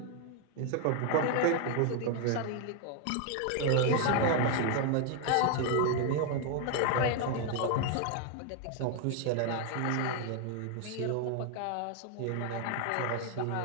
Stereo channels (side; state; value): both; different; correlation 0.00